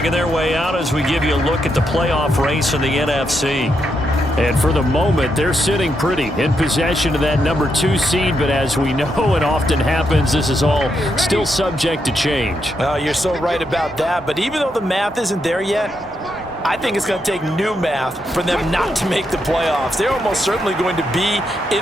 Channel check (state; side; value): normal; both; correlation 0.81